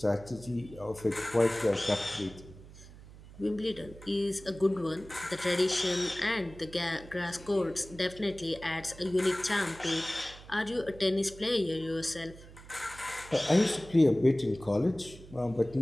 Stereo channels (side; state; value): right; noise; hum, 18 dB below the sound